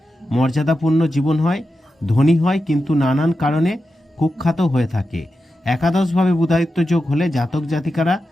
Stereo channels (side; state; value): both; normal; correlation 0.90